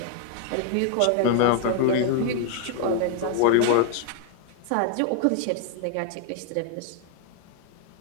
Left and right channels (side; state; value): both; different; correlation 0.00